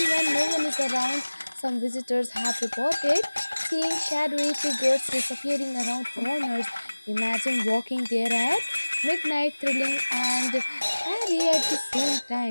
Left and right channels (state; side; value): inverted; both; correlation -1.00